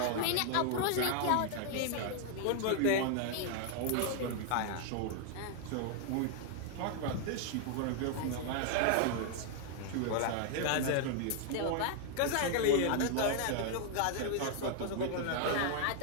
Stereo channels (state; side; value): different; both; correlation 0.00